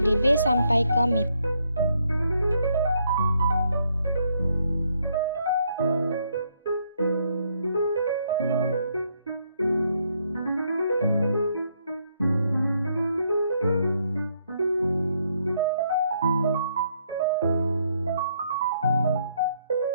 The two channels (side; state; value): both; inverted; correlation -0.73